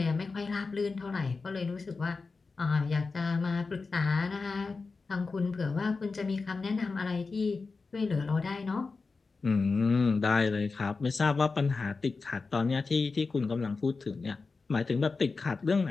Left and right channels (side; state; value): right; quieter; 4.2 dB